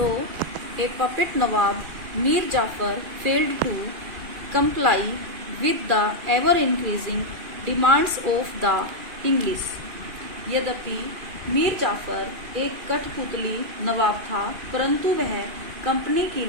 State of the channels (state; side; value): late; left; 2.3 ms